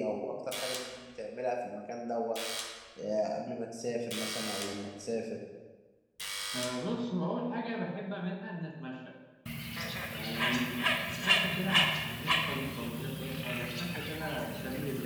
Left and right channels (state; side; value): identical; both; correlation 1.00